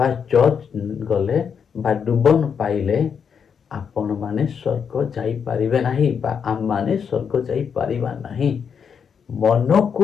ଚର୍ଚ୍ଚ ଗଲେ ବା ଡୁବନ ପାଇଲେ ଆପଣମାନେ ସ୍ୱର୍ଗ ଯାଇପାରିବେ ନାହିଁ ବା ଆମମାନେ ସ୍ୱର୍ଗ ଯାଇପାରିବା ନାହିଁ। ମନକୁ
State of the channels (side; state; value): right; quieter; 6.9 dB